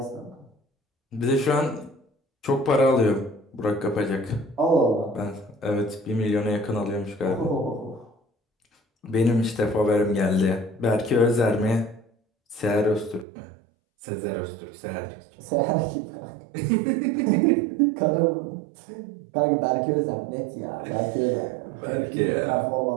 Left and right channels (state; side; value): drops out; left; at 13.2 s